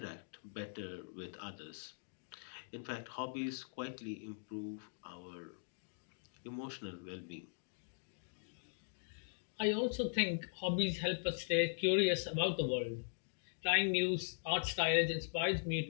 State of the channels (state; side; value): silent; right; digital silence